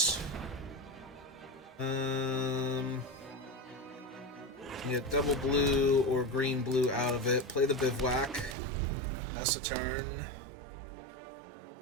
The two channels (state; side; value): drops out; left; at 8.6 s